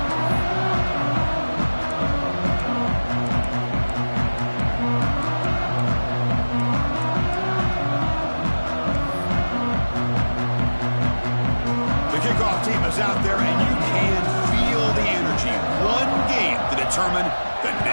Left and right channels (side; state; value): both; inverted; correlation -1.00